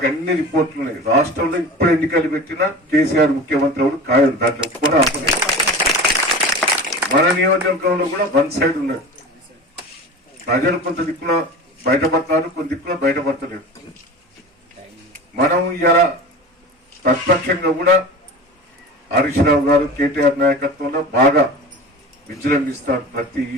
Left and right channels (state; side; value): normal; both; correlation 0.34